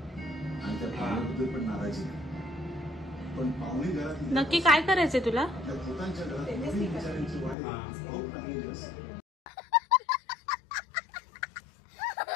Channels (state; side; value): drops out; right; at 7.6 s